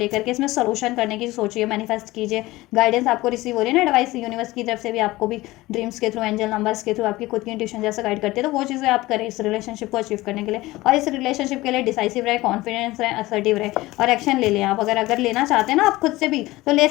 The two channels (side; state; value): right; quieter; 19.0 dB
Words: के, इसमें सोल्यूशन करने की सोचिए, मैनिफेस्ट कीजिए। गाइडेंस आपको रिसीव हो रही है ना, एडवाइस यूनिवर्स की तरफ से भी, आपको भी ड्रीम्स के थ्रू, एंजल नंबर्स के थ्रू, आपकी खुद की इंट्यूशन जैसा गाइड करते हैं, तो वो चीज़ें आप करें इस रिलेशनशिप को अचीव करने के लिए। और इस रिलेशनशिप के लिए डिसाइसिव रहे, कॉन्फिडेंस रहे, असर्टिव रहे और एक्शन ले लें आप। अगर लेना चाहते हैं ना आप खुद से भी, तो ले